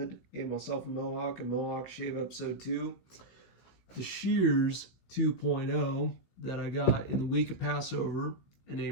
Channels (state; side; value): late; right; 16 ms